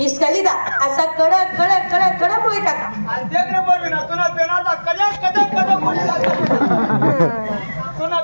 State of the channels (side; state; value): both; inverted; correlation -1.00